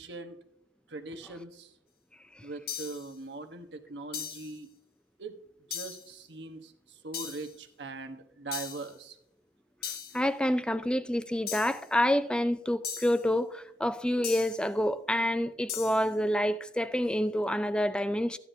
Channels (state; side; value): normal; both; correlation 0.86